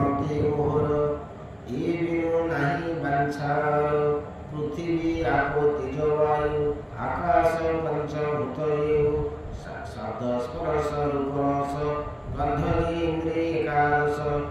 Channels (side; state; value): both; identical; correlation 1.00